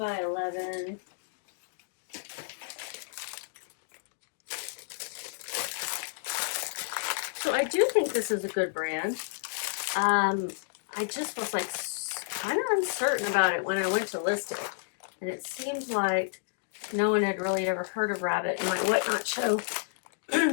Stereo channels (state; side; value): silent; right; digital silence